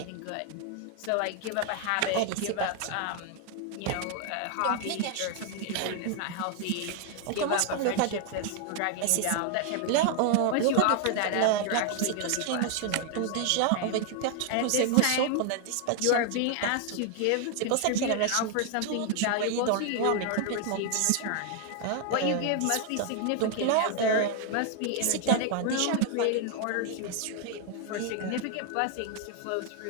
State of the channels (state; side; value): different; both; correlation 0.00